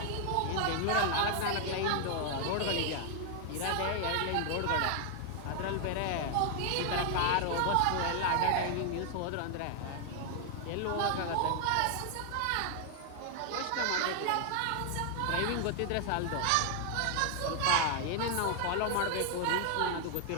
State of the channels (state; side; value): different; both; correlation 0.00